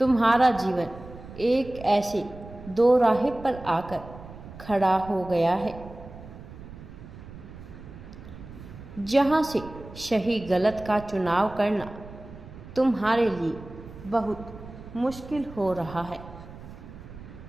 जीवन एक ऐसे दो राह पर आकर खड़ा हो गया है जहां से सही गलत का चुनाव करना तुम्हारे लिए बहुत मुश्किल हो रहा है।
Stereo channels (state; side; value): noise; right; rumble, 15 dB below the sound